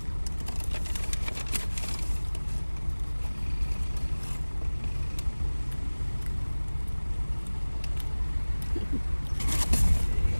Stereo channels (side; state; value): both; inverted; correlation -1.00